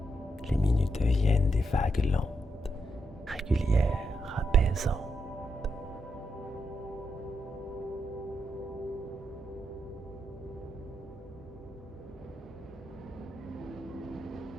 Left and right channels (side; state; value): both; normal; correlation 0.82